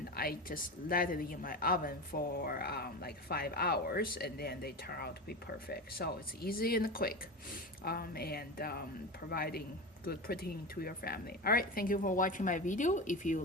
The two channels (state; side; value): normal; both; correlation 0.23